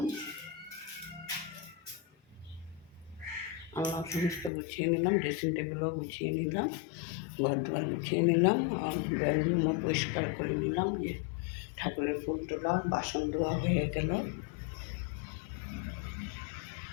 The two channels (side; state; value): right; drops out; at 4.5 s